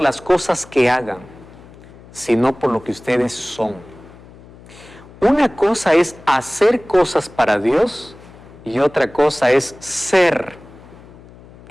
las cosas que hagan, sino por lo que ustedes son. Una cosa es hacer cosas para Dios y otra cosa es ser,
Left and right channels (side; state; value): left; noise; hum, 21 dB below the sound